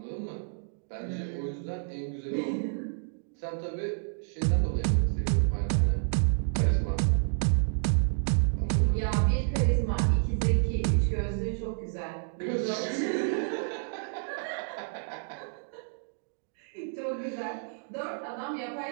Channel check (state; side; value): silent; left; digital silence